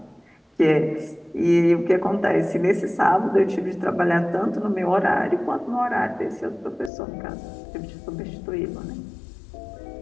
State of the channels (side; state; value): right; drops out; at 6.9 s